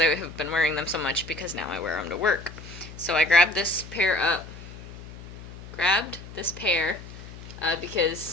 I have been wearing them so much because now I wear them to work. So I grabbed this pair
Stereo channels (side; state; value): left; noise; hum, 14 dB below the sound